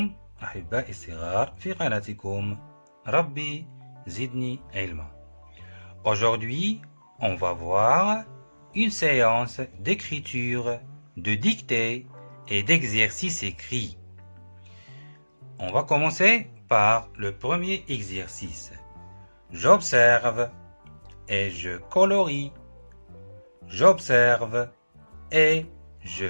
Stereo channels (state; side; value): inverted; both; correlation -1.00